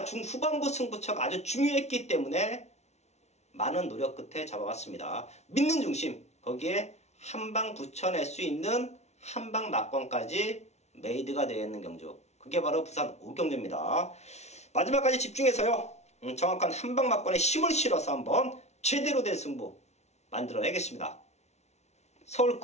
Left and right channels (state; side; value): late; right; 0.32 ms